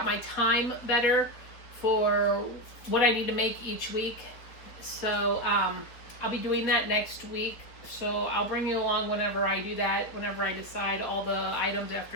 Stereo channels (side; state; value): right; late; 4.3 ms